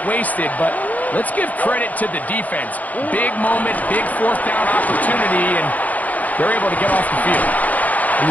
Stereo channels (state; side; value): late; right; 0.077 ms